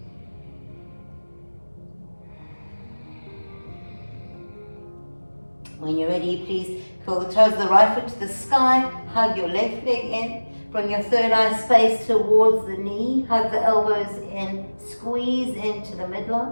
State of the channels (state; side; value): inverted; both; correlation -1.00